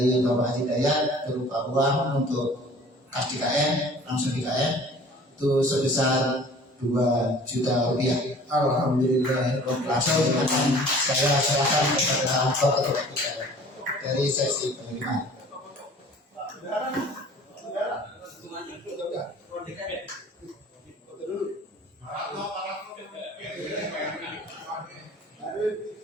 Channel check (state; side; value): normal; both; correlation 0.48